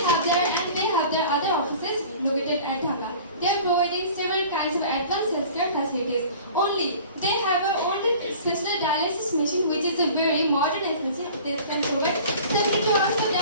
have their other offices located at Dhaka. They are providing several kinds of advanced healthcare facilities. Only they have a only special dialysis machine, which is a very modern facility that can provide 72 hours of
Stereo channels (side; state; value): both; inverted; correlation -0.44